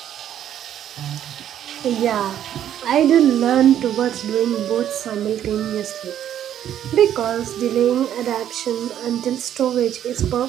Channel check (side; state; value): left; quieter; 10.6 dB